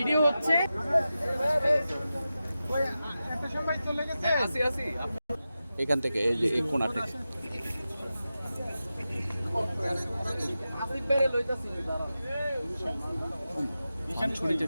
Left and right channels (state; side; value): inverted; both; correlation -0.93